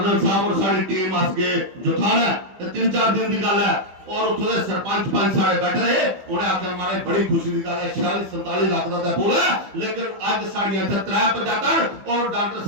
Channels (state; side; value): late; left; 15 ms